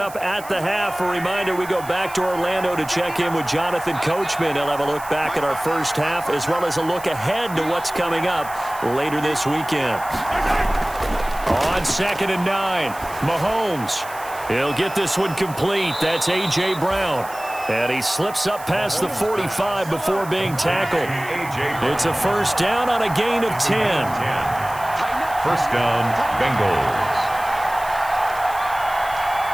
at the half, a reminder, we go back to Orlando to check in with Jonathan Coachman. He'll have a look back at our first half, as well as a look ahead to what's coming up later this weekend. On 2nd and 9, Mahomes. He'll get this one complete. That's A.J. Brown. And he slips up past the 45 before being tackled. It's a first down on a gain of 10. First down, Bengals.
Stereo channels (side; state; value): right; noise; hiss, 17 dB below the sound